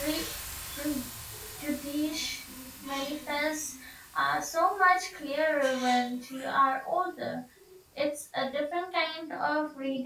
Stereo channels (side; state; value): both; identical; correlation 1.00